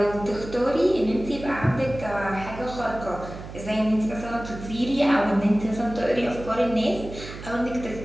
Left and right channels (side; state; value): right; noise; hum, 12 dB below the sound